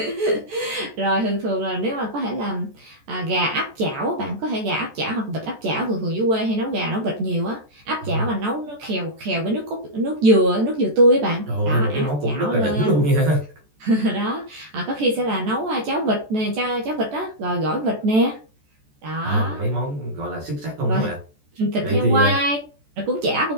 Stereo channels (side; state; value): left; late; 14 ms